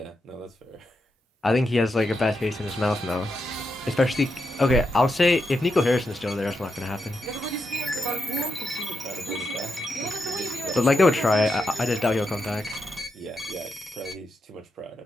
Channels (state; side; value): normal; both; correlation 0.85